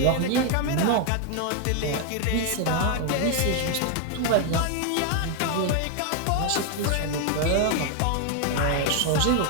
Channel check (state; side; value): different; both; correlation 0.01